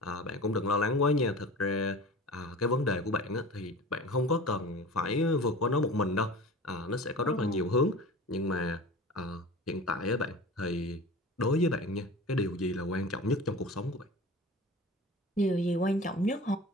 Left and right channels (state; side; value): normal; both; correlation 0.36